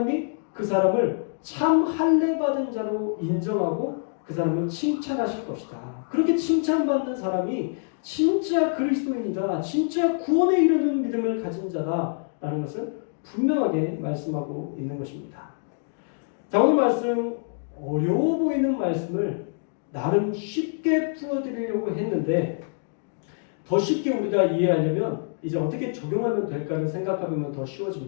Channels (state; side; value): silent; right; digital silence